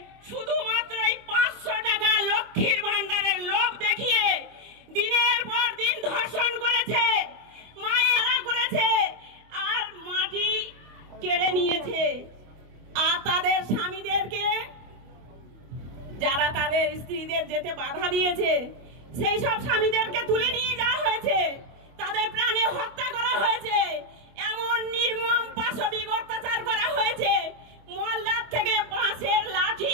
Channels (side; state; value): left; late; 25 ms